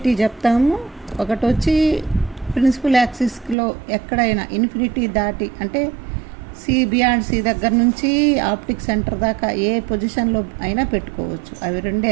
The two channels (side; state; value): left; drops out; at 3.6 s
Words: చెప్తాము, ఒకటి వచ్చి ప్రిన్సిపల్ యాక్సిస్లో ఎక్కడైనా ఇన్ఫినిటీ దాటి, అంటే బియాండ్ సి దగ్గర నుంచి ఆప్టిక్ సెంటర్ దాకా ఏ పొజిషన్లో అయినా పెట్టుకోవచ్చు. అవి